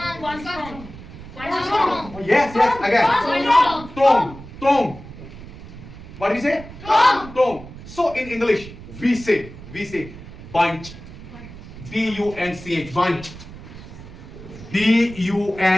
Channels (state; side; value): noise; right; rumble, 15 dB below the sound